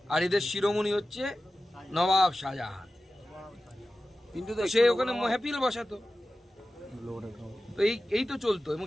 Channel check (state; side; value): normal; both; correlation 0.94